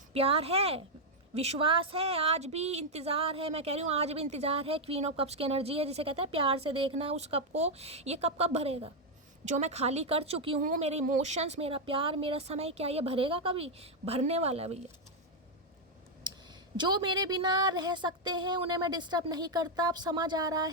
प्यार है, विश्वास है, आज भी इंतज़ार है, मैं कह रही हूँ आज भी इंतज़ार है। क्वीन ऑफ कप्स की एनर्जी है जिसे कहते हैं प्यार से देखना उस कप को, ये कप कब भरेगा जो मैं खाली कर चुकी हूँ। मेरे इमोशंस, मेरा प्यार, मेरा समय, क्या ये भरेगा कभी? भरने वाला है भैया। जो मेरे बिना रह सकते हैं उन्हें मैं डिस्टर्ब नहीं करता। अब समझ आ रहा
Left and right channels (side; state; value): both; normal; correlation 0.00